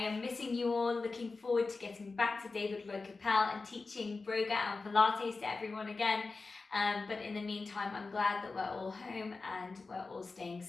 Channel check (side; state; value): right; quieter; 3.9 dB